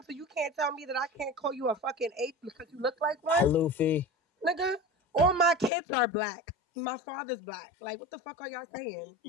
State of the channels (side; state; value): right; drops out; at 5.7 s